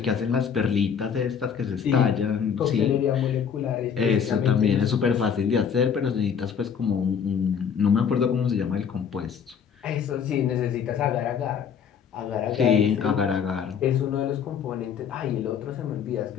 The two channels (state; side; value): quieter; right; 7.3 dB